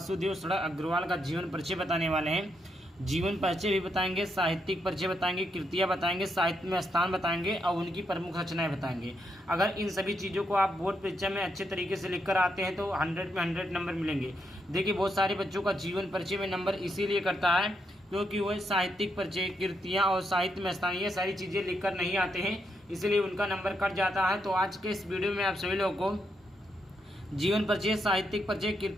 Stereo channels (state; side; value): normal; both; correlation 0.80